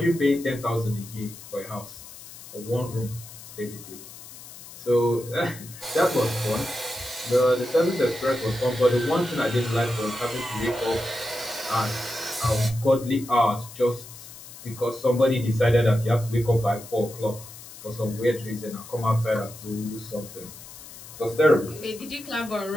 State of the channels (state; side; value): noise; left; hiss, 16 dB below the sound